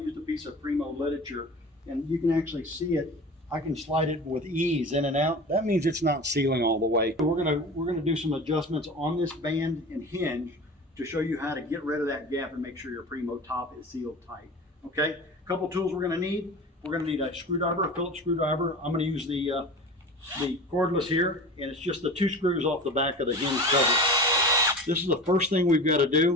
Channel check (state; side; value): normal; both; correlation 0.34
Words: a piece of Primo literature, and you can actually see it. I can slide it with ease in and out. That means it's not sealing all the way. So we're gonna do some adjustments on this band and hinge to show you how to get rid of that gap and make sure your Primo top is sealed tight. Okay, a couple tools we're going to need. We're going to need a screwdriver, a Phillips screwdriver. I'm going to use the cordless here, and it's just the 2 screws off the back of the hinge cover. This is the first thing we've got to